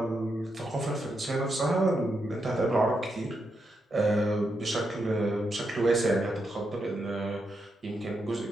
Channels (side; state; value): both; normal; correlation 0.83